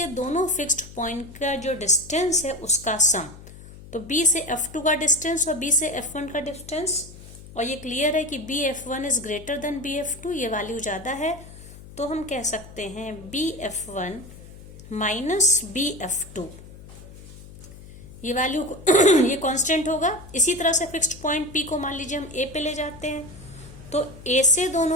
दोनों फिक्स्ड पॉइंट का जो डिस्टेंस है उसका सम, तो B से F2 का डिस्टेंस और B से F1 का डिस्टेंस, और ये क्लियर है कि BF1 is greater than BF2, ये वैल्यू ज्यादा है, तो हम कह सकते हैं BF1 माइनस BF2 ये वैल्यू ये कांस्टेंट होगा। इसी तरह से फिक्स्ड पॉइंट P को मान लीजिए हम A पे ले जाते हैं, तो A से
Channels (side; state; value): left; noise; hum, 17 dB below the sound